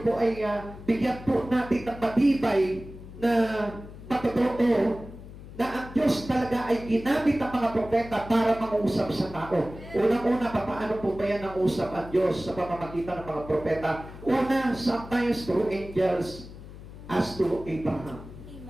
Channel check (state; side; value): noise; left; hum, 15 dB below the sound